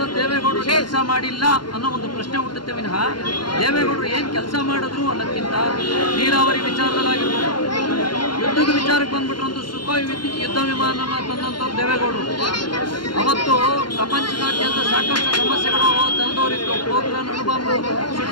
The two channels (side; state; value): right; late; 0.71 ms